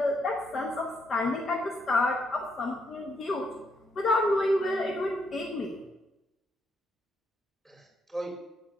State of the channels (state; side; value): normal; both; correlation 0.76